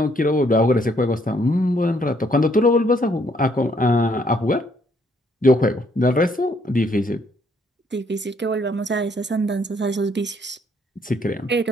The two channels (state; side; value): normal; both; correlation 0.68